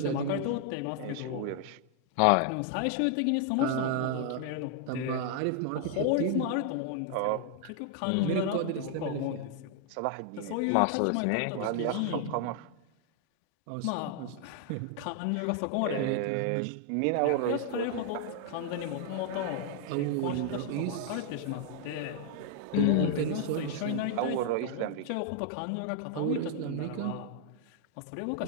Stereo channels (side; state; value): both; different; correlation 0.00